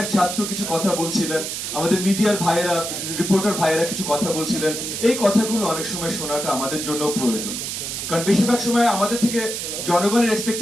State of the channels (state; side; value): noise; right; hiss, 5 dB below the sound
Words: ছাত্র কিছু কথা বলছিলেন, আমাদের মিডিয়ার ভাইয়েরা, রিপোর্টার ভাইয়েরা কিছু কথা বলছিলেন, এই কথাগুলো অনেক সময় শোনাটা আমাদের জন্য প্রয়োজন। কারণ বেশিরভাগ সময় আমাদের থেকে জনগণের